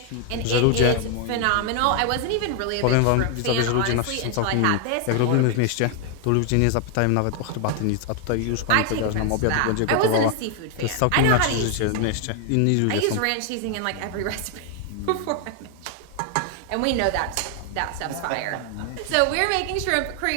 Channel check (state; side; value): different; both; correlation 0.00